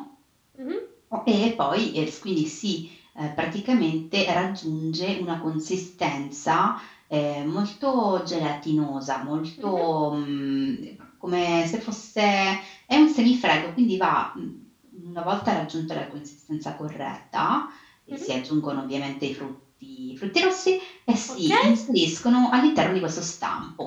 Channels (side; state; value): both; identical; correlation 1.00